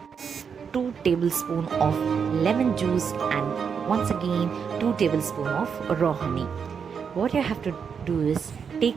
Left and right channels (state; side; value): quieter; left; 6.6 dB